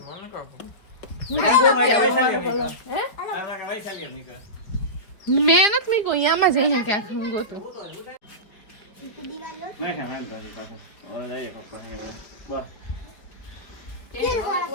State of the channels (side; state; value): right; late; 4.6 ms